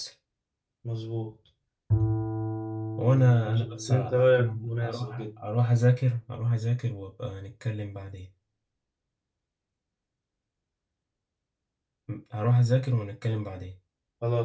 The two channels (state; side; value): identical; both; correlation 1.00